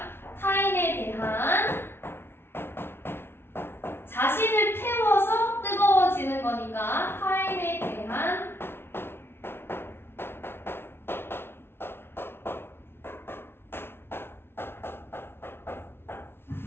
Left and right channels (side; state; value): right; late; 0.11 ms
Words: 타인에 대한 자신을 태워서 뜨거워지는 거니까 타인에 대한